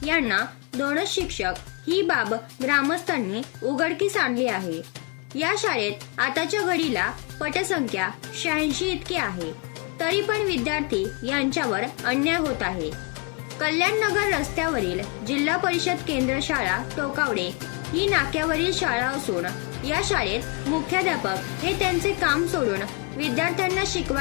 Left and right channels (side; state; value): right; quieter; 29.1 dB